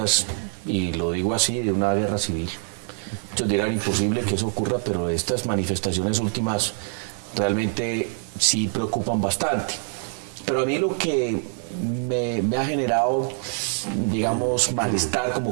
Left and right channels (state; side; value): silent; left; 56 dB below the other